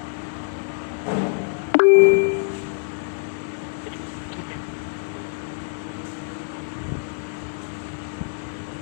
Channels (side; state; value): right; silent; digital silence